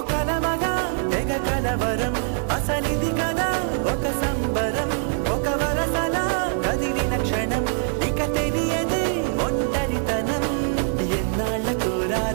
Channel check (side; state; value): left; silent; 55 dB below the other